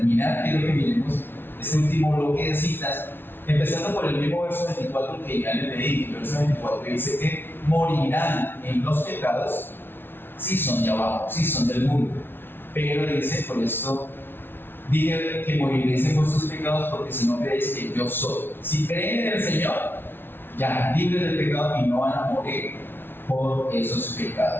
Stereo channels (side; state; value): right; late; 0.11 ms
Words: quiero que miremos este último bloque de citas, empezando por el mismo verso 24 que ya les leí. El verso 24 dice que morirán en los pecados, sí son de abajo, sí son del mundo. Pero dice, por esto, dije que moriréis en vuestros pecados, porque si no creéis que yo soy. Si creen en el Señor, ya, libres del pecado y no van a morir por esos